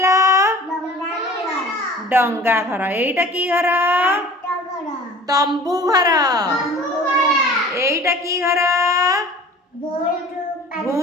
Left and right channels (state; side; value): normal; both; correlation 0.45